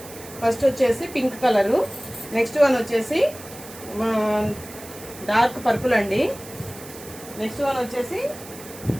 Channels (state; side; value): noise; right; hiss, 16 dB below the sound